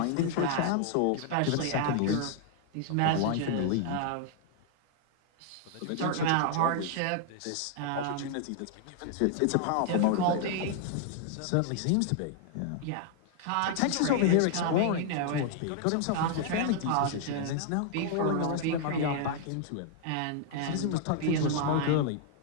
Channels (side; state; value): both; different; correlation 0.00